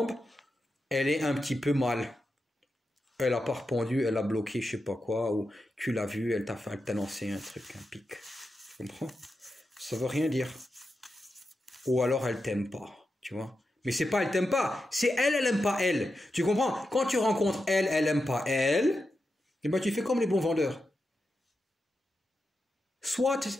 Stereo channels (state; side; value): normal; both; correlation 0.89